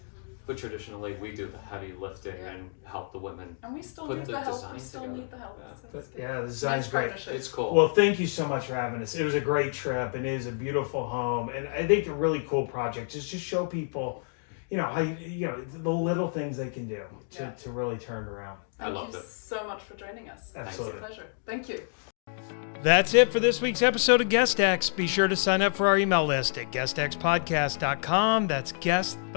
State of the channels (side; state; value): right; silent; digital silence